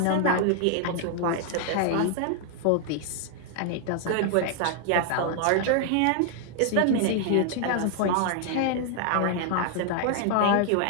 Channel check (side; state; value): both; different; correlation 0.00